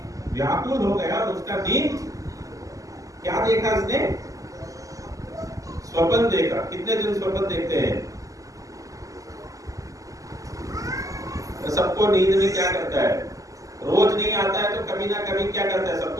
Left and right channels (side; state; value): left; late; 0.16 ms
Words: व्याकुल हो गया और उसका नींद। क्या देखा इसने? स्वप्न देखा। कितने दिन स्वप्न देखते हैं? सबको नींद में क्या करता है? रोज नहीं आता है तो कभी ना कभी क्या करता है?